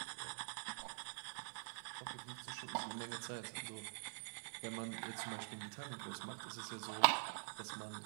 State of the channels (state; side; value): silent; left; digital silence